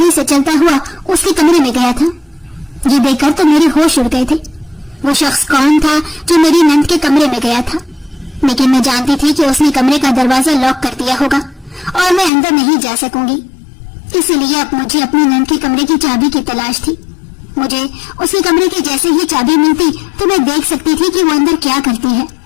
سے چلتا ہوا اس کے کمرے میں گیا تھا۔ یہ دیکھ کر تو میرے ہوش اڑ گئے تھے۔ وہ شخص کون تھا جو میری نند کے کمرے میں گیا تھا؟ لیکن میں جانتی تھی کہ اس نے کمرے کا دروازہ لاک کر دیا ہوگا اور میں اندر نہیں جا سکوں گی، اسی لیے اب مجھے اپنی نند کے کمرے کی چابی کی تلاش تھی۔ مجھے اس کے کمرے کی جیسے ہی چابی ملتی تو میں دیکھ سکتی تھی کہ وہ اندر کیا کرتی ہے۔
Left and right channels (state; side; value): drops out; right; at 12.3 s